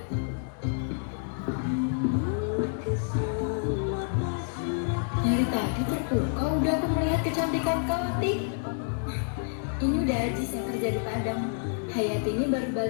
Dari tadi terpukau udah aku melihat kecantikan kau, Ati. Ini udah Ajis yang kerja di Padang. Hayati ini baru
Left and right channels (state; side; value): silent; right; 59 dB below the other